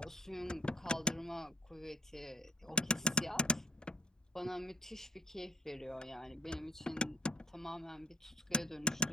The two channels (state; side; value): normal; both; correlation 0.49